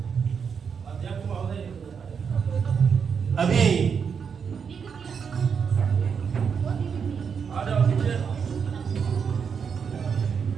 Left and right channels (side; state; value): left; quieter; 6.5 dB